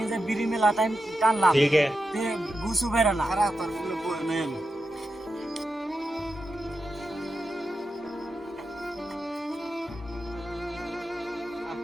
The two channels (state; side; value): normal; both; correlation 0.89